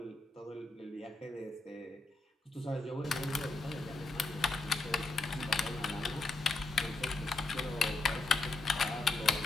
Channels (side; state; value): right; quieter; 3.3 dB